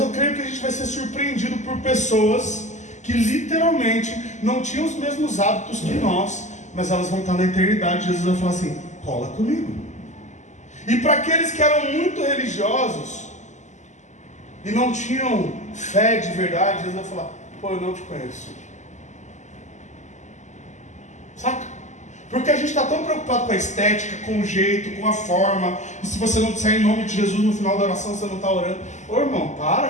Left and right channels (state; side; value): late; right; 0.34 ms